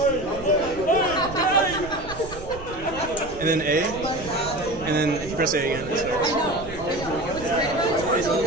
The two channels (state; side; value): noise; right; rumble, 14 dB below the sound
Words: And then A, and then if you press A again, it starts. Yeah,